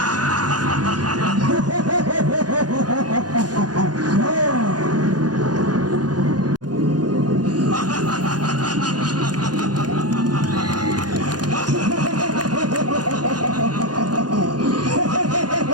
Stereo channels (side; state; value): left; late; 0.69 ms